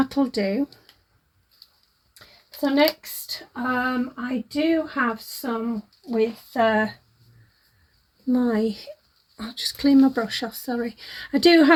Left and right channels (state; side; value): identical; both; correlation 1.00